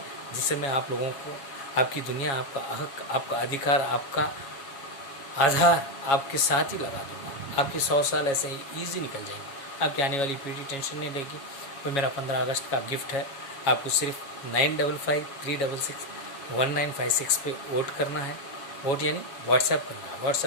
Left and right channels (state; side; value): late; right; 7.2 ms